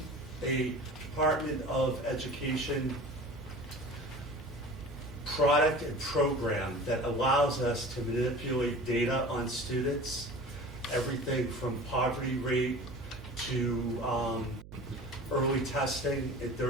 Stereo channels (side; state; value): right; noise; hum, 16 dB below the sound